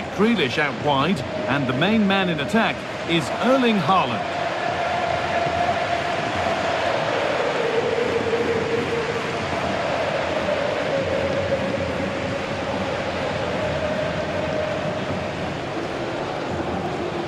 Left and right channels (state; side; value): identical; both; correlation 1.00